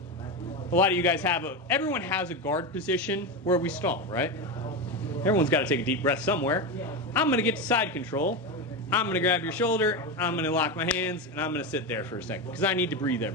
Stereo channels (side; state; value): both; normal; correlation 0.16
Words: A lot of you guys everyone has a guard position where we stall, right? Everyone's got to take a deep breath somewhere. I'm going to get to side control. I'm going to grab your shoulder, I'm going to lock my hands, and I'm going to sit there for a second because I need to breathe